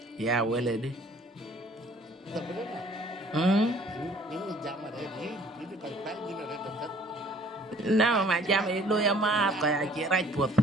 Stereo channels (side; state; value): both; normal; correlation 0.56